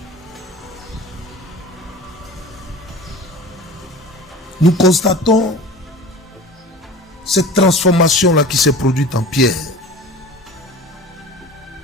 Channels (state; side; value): normal; both; correlation 0.38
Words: Nous constatons cette transformation-là qui s'est produite en Pierre.